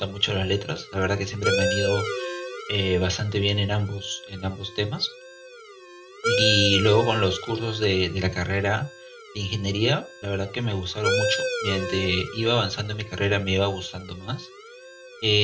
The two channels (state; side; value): identical; both; correlation 1.00